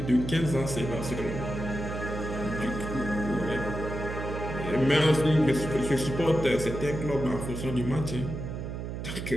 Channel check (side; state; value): right; noise; hum, 6 dB below the sound